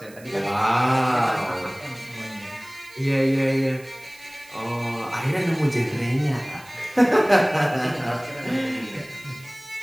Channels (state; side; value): noise; right; hiss, 23 dB below the sound